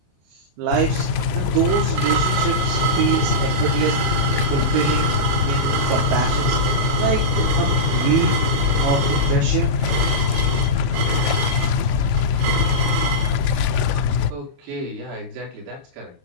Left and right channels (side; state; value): left; late; 22 ms